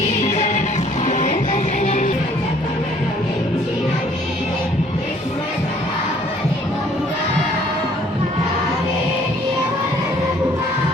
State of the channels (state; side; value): normal; both; correlation 0.59